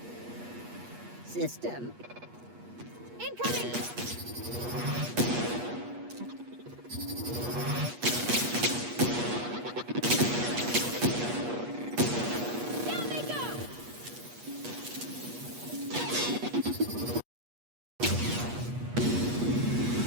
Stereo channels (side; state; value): left; late; 8.3 ms